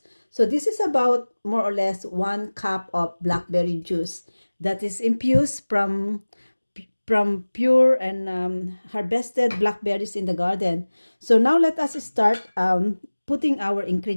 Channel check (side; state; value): both; inverted; correlation -1.00